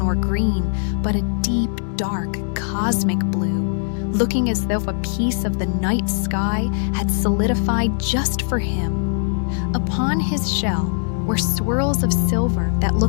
or green, but a deep, dark, cosmic blue, looking as though a piece of the night sky had solidified just for him. Upon his shell were swirls of silver that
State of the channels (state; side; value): silent; right; digital silence